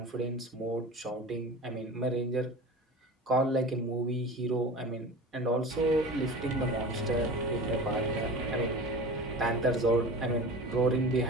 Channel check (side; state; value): both; normal; correlation 0.35